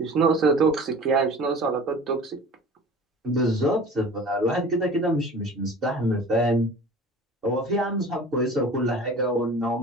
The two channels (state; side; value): normal; both; correlation 0.41